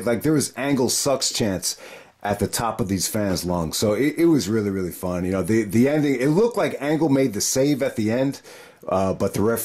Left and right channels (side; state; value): both; identical; correlation 1.00